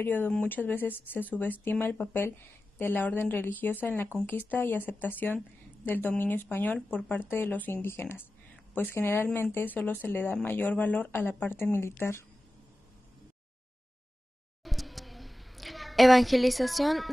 muchas veces se subestima el papel de la orden religiosa en la conquista y aceptación del dominio español por parte de los indígenas, pues generalmente solo se le da mayor valor a la parte militar. Evangelización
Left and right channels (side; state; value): both; normal; correlation 0.94